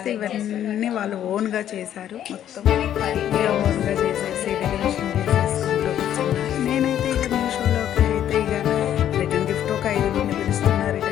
ఇవన్నీ వాళ్ళు ఓన్గా చేశారు. మొత్తం ఇక ఓన్గా చేసేసి డెకరేషన్ చేసేసుకుంటూ కూర్చున్నారు. నేనైతే ఇక మీషోలోకి అయితే ఇక రిటర్న్ గిఫ్ట్ ఒక 5 మంది పిలుస్తున్నారు,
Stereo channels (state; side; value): quieter; right; 10.8 dB